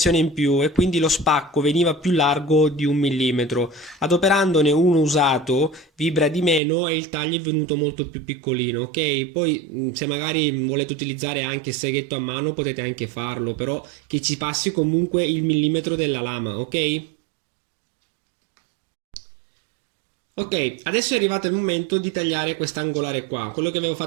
in più e quindi lo spacco veniva più largo di 1 mm. Adoperandone uno usato vibra di meno e il taglio è venuto molto più piccolino, ok? Poi se magari volete utilizzare anche il seghetto a mano potete anche farlo, però che ci passi comunque il millimetro della lama, ok? Ok, adesso è arrivato il momento di tagliare quest'angolare qua, quello che avevo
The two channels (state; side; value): drops out; left; at 6.6 s